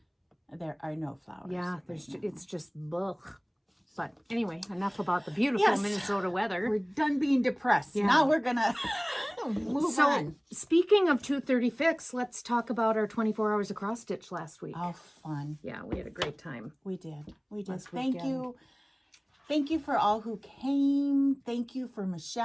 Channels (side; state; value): both; identical; correlation 1.00